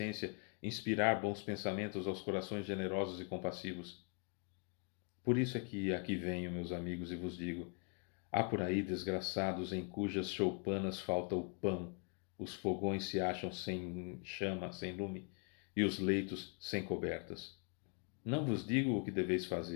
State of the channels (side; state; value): right; quieter; 36.6 dB